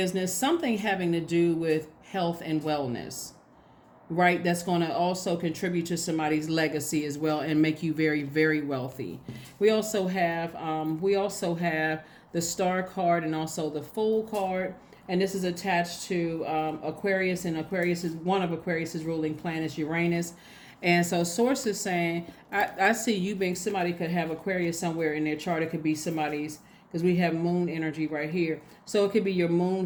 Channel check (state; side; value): identical; both; correlation 1.00